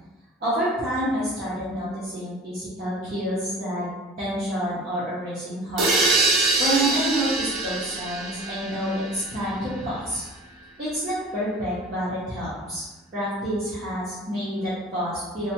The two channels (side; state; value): both; normal; correlation 0.41